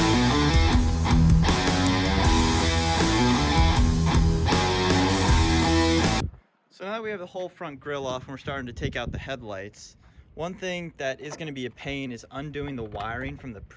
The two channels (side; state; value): both; identical; correlation 1.00